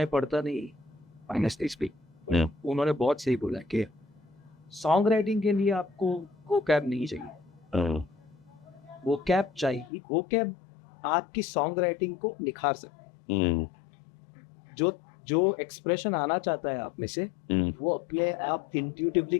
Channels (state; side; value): drops out; right; at 9.9 s